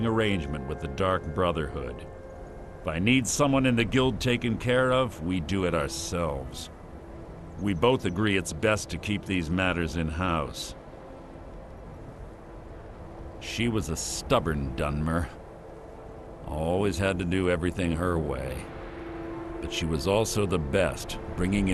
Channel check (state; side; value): identical; both; correlation 1.00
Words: arrangement with the Dark Brotherhood. If I need someone in the guild taken care of, we do it ourselves. We both agree it's best to keep these matters in-house. She was a stubborn Dunmer. Always had to do everything her way. But she was also the best, bringing